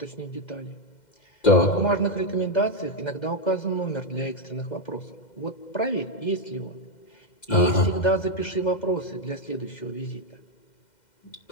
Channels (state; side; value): late; right; 2.1 ms